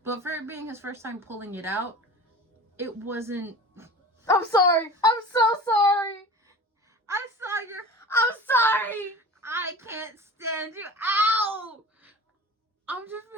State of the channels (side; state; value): both; normal; correlation 0.37